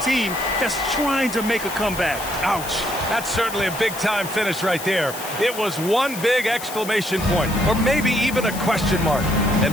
that's trying to make a comeback. Ouch. That's certainly a big-time finish right there. It was one big exclamation point, or maybe even a question mark.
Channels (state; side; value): noise; left; hiss, 11 dB below the sound